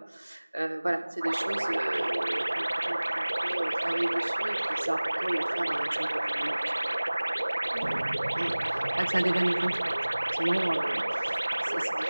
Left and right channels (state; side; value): inverted; both; correlation -1.00